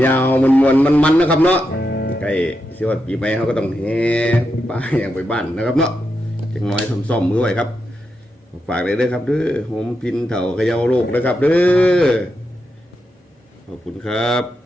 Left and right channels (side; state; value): both; normal; correlation 0.86